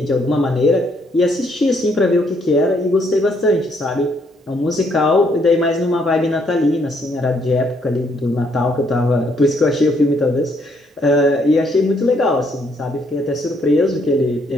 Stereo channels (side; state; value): both; normal; correlation 0.70